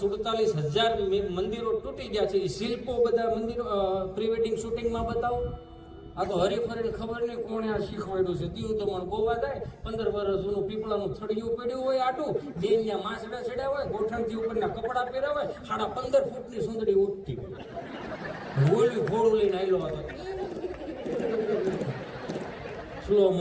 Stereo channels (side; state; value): both; identical; correlation 1.00